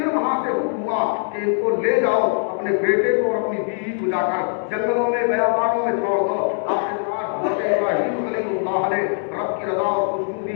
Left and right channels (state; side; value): silent; right; digital silence